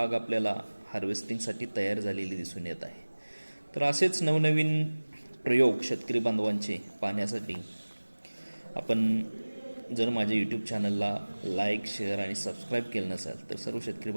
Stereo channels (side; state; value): both; inverted; correlation -1.00